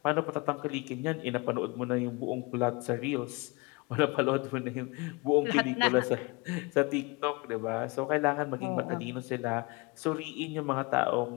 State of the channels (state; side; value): quieter; right; 26.8 dB